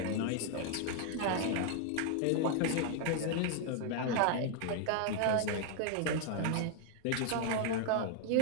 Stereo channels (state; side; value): different; both; correlation 0.00